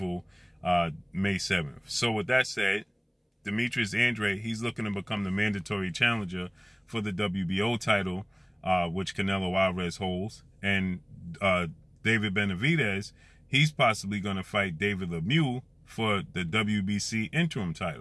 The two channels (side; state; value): both; identical; correlation 1.00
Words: May 7th. So with that said, Demetrius Andrade, he's looking to become the mandatory challenger for the WBO title, which Canelo Alvarez holds. And David Benavidez, he's possibly going to fight David Lemieux for the WBC interim